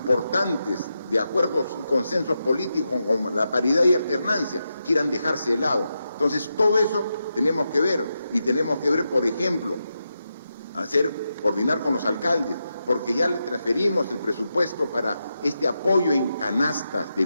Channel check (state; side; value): inverted; both; correlation -0.87